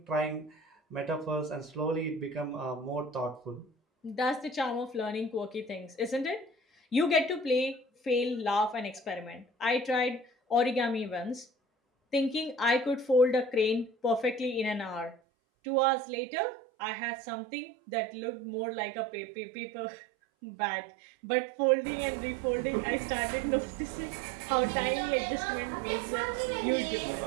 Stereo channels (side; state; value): left; drops out; at 15.2 s